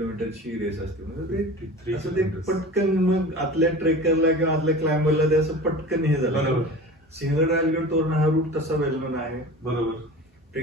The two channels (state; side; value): normal; both; correlation 0.36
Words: रेस असते. म्हणजे असं ते पटकन मग आतल्या ट्रेकरला किंवा आतल्या क्लाइंबरला ते असं पटकन हे झालं. सिंहगड राजगड तोरणा हा रूट तसा वेलमन आहे. बरोबर.